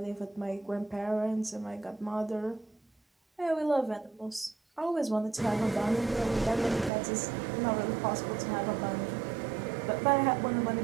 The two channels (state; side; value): drops out; left; at 6.9 s